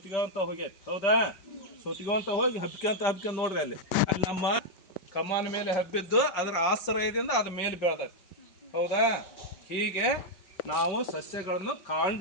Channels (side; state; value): right; late; 5.2 ms